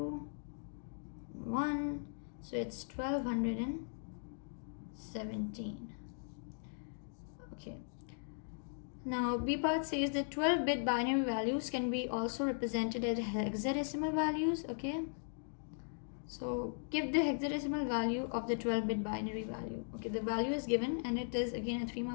1. So it's 1217. Okay. Now B part says that 12-bit binary values can be also represented as hexadecimal values. Okay. So give the hexadecimal value of the 12-bit binary value. Okay, the value is given and it is again a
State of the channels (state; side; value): silent; right; digital silence